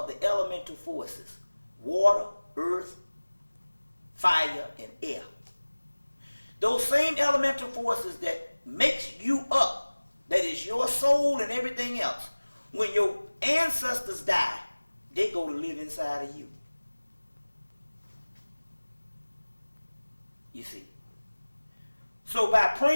the elemental forces: water, earth, fire, and air. Those same elemental forces that makes you up, that is your soul and everything else. When your ancestors die, they go to live inside of you. You see. So by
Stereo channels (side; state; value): both; inverted; correlation -1.00